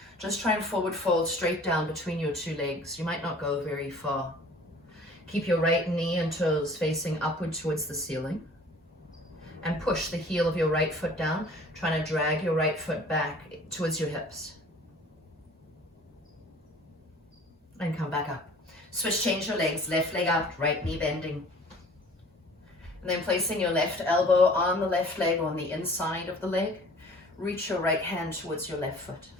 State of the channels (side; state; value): both; normal; correlation 0.49